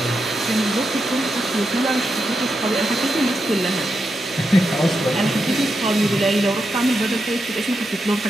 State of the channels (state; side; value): normal; both; correlation 0.86